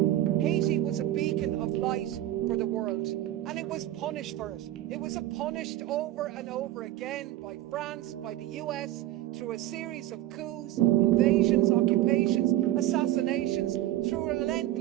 Haiti was a beacon of light for the world, and it was punished for it. It was punished over and over again by France, by the US, through a series of coups, invasions, occupations, assassinations, through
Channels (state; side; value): quieter; left; 14.5 dB